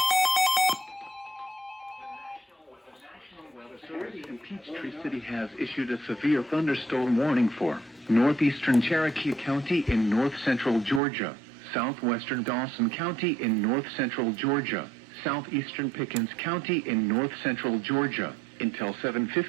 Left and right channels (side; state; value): left; drops out; at 11.0 s